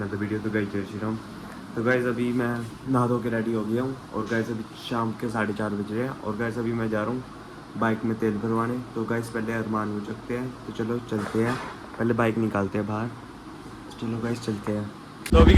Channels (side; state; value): both; identical; correlation 1.00